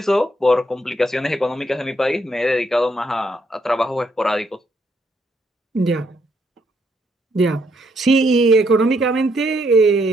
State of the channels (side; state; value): both; normal; correlation 0.74